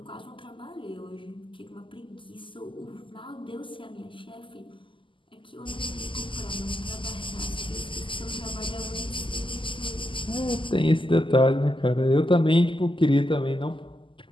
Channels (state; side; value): late; right; 0.25 ms